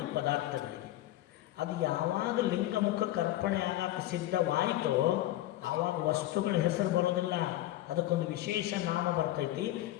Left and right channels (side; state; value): right; quieter; 15.2 dB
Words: ಈ ಪದಾರ್ಥಗಳಿಗೆ. ಅದು ಯಾವಾಗ ಲಿಂಗ ಮುಖಕ್ಕೆ ಅರ್ಪಣೆ ಆಗಕ್ಕೆ ಸಿದ್ಧವಾಯಿತೋ ಆವಾಗ ವಸ್ತುಗಳ ಹೆಸರು ಬರೋದಿಲ್ಲ, ಅದಕ್ಕೊಂದು ವಿಶೇಷ ನಾಮ ಬರ್ತೈತಿ,